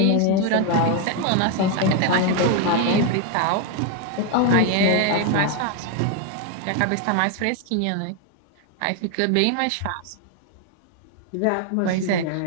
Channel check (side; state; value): both; different; correlation 0.01